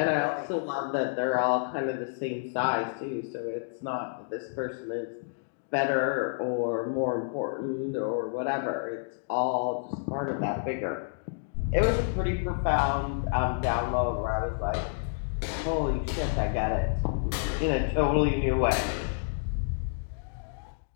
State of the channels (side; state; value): right; silent; digital silence